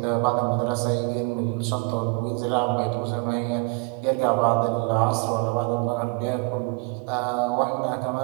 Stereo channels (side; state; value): left; quieter; 31.4 dB